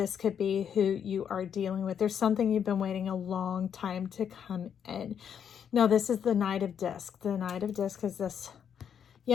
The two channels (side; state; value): right; quieter; 8.2 dB